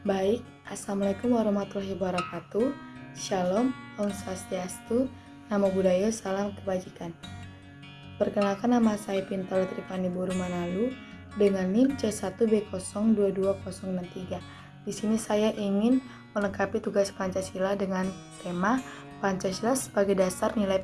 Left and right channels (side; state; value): both; identical; correlation 1.00